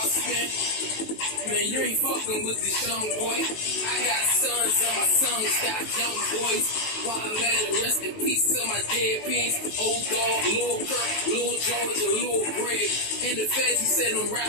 spin. Man, you ain't fucking with this young boy. I got sons and my sons got young boys. While I'm at it, rest in peace to my dead pigs. Old dog, Lil Kirk, Lil George, and Lil Greg. In the feds, he said them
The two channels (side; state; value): right; late; 19 ms